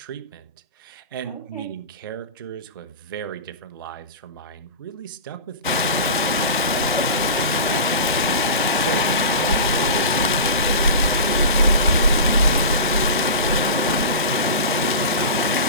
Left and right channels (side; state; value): both; inverted; correlation -0.31